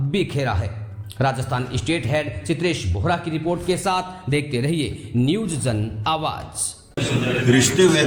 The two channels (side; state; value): both; identical; correlation 1.00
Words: है। राजस्थान स्टेट हेड चित्रेश बोहरा की रिपोर्ट के साथ देखते रहिए न्यूज जन आवाज। रिश्ते